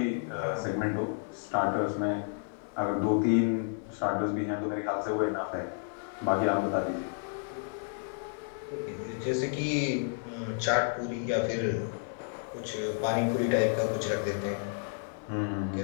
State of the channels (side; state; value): right; silent; 57 dB below the other